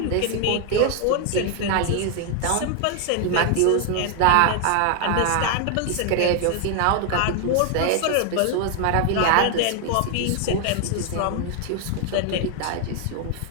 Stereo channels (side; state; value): both; different; correlation 0.00